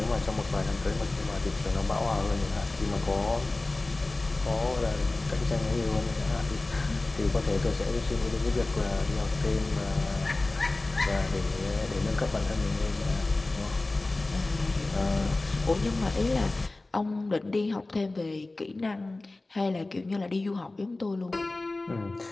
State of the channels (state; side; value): quieter; right; 3.0 dB